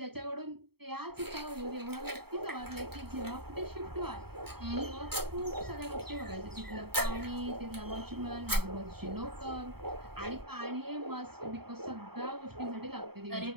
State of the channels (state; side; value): late; left; 0.96 ms